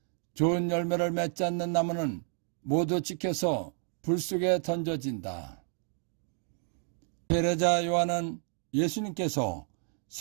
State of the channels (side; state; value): left; silent; 57 dB below the other